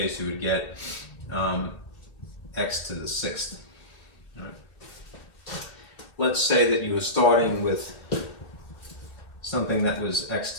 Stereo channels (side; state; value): right; late; 2.7 ms